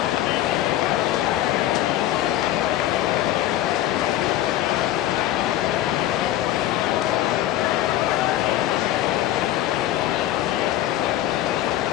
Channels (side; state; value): right; quieter; 13.6 dB